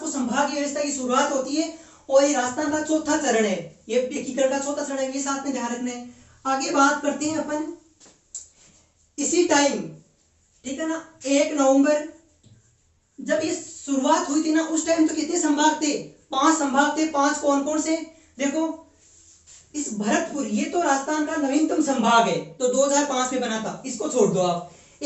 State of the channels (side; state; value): both; identical; correlation 1.00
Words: संभागीय व्यवस्था की शुरुआत होती है, और ये राजस्थान का चौथा चरण है, ये एकीकरण का चौथा चरण है, ये साथ में ध्यान रखना है। आगे बात करते हैं अपन इसी टाइम, ठीक है ना, 1 नवंबर जब ये शुरुआत हुई थी ना, उस टाइम तो कितने संभाग थे? 5 संभाग थे। 5 कौन कौन से? देखो, इस भरतपुर, ये तो राजस्थान का नवीनतम संभाग है, तो 2005 में बना था, इसको छोड़ दो आप।